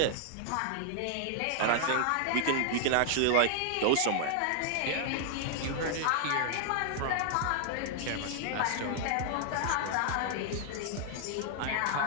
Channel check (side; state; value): both; different; correlation -0.01